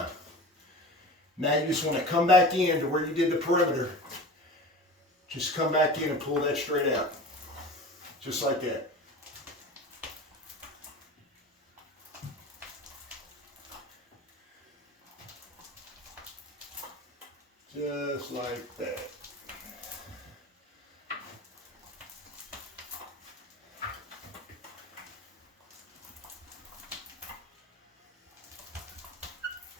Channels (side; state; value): both; normal; correlation 0.35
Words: Now you just want to come back in to where you did the perimeter. Just come back in and pull that straight out. Just like that. Just like that.